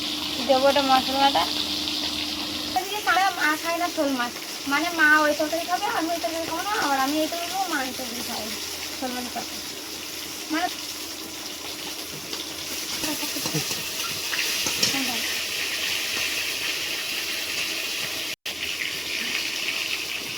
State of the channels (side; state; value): both; identical; correlation 1.00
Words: দেবো, এটা মশলা বাটা। মা খায় না শোল মাছ, মানে মা ওই তরকারি খাবে, আমি ওই তরকারি খাবো না, আবার আমি এই তরকারি খাবো, মা এই তরকারি খাবে শোল মাছের তরকারি। মানে